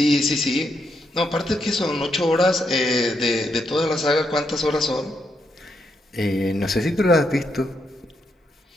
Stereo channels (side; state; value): both; normal; correlation 0.80